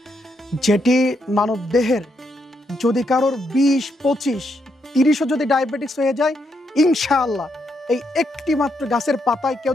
যেটি মানব দেহের যদি কারোর 20, 25, 30ও যদি ডায়াবেটিক্স হয়ে যায়, ইনশাআল্লাহ এই একটি মাত্র গাছের পাতায় কেউ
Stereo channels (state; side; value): normal; both; correlation 0.79